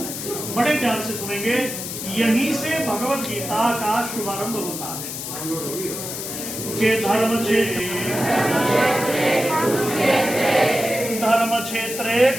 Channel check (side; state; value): left; noise; hiss, 7 dB below the sound